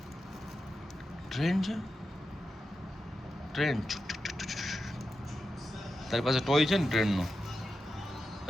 ટ્રેન છે ટ્રેન. તારી પાસે ટોય છે ને ટ્રેનનો?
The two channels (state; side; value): normal; both; correlation 0.90